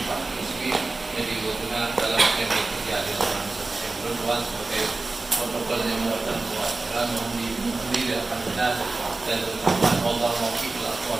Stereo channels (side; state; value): left; quieter; 3.4 dB